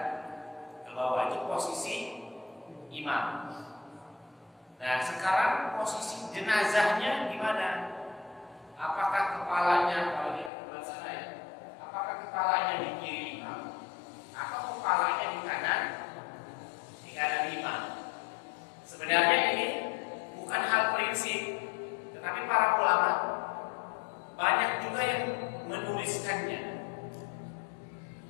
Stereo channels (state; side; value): drops out; right; at 10.5 s